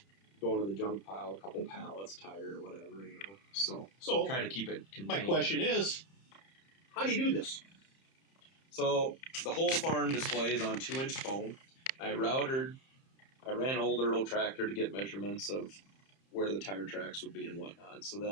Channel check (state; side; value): late; right; 30 ms